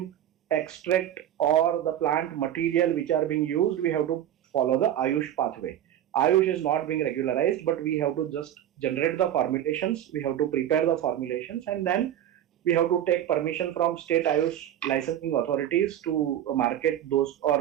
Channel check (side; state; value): left; quieter; 11.2 dB